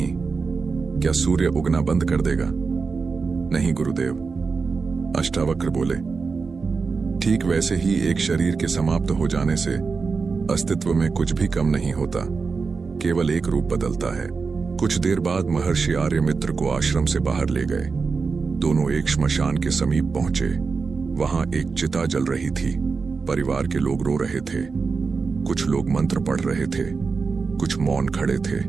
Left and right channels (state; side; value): quieter; left; 4.8 dB